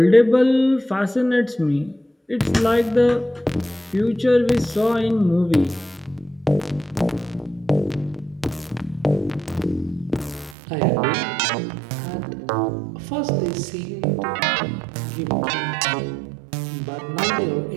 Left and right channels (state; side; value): drops out; left; at 10.6 s